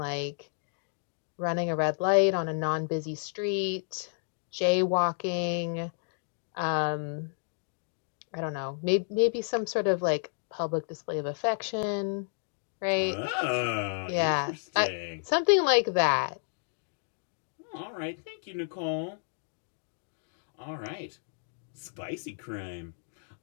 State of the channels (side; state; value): right; silent; digital silence